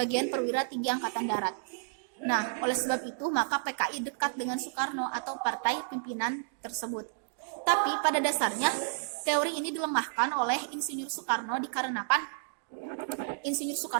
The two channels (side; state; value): left; silent; digital silence